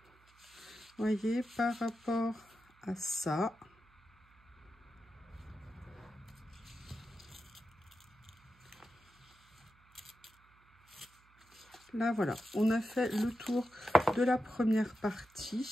voyez, par rapport à ça. Là, voilà, on a fait le tour de la première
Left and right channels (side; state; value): right; noise; hum, 30 dB below the sound